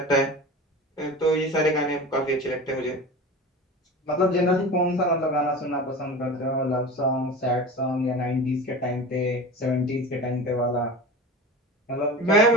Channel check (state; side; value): normal; both; correlation 0.32